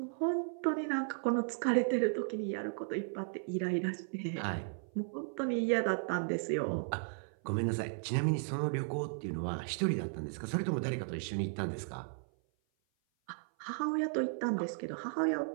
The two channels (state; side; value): silent; left; 54 dB below the other